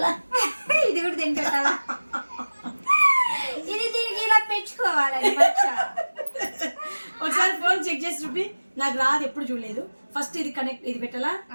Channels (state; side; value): inverted; both; correlation -1.00